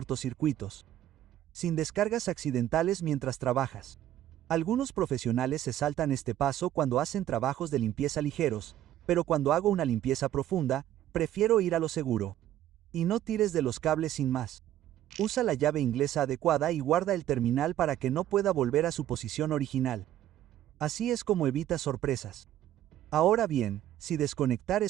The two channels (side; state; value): left; quieter; 12.4 dB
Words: Sin descargas accidentales mientras trabajas. Algunos profesionales se saltan este paso cuando hacen trabajos de limpieza ligeros, pero cuando hago una limpieza profunda, prefiero ir a lo seguro. Y no tires de los cables sin más. Usa la llave inglesa adecuada y guarda el terminal para que no pueda volver a su posición original. Así es como evita sorpresas. Ahora bien, si desconectar